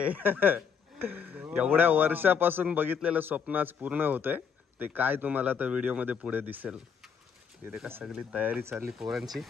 एवढ्या वर्षापासून बघितलेलं स्वप्न आज पूर्ण होतंय. ते काय तुम्हाला तर व्हिडिओ मध्ये पुढे दिसेल. इथे का सगळी तयारी चालली पोरांची.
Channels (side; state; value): right; quieter; 6.8 dB